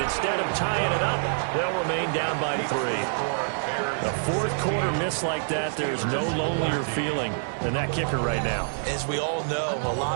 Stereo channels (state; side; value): silent; left; digital silence